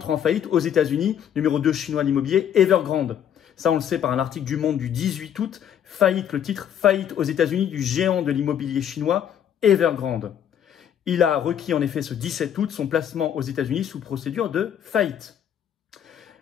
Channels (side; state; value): right; quieter; 9.4 dB